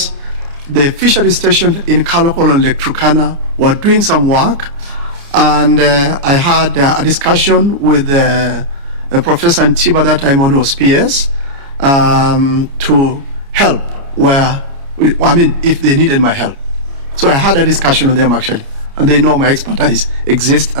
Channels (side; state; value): left; late; 29 ms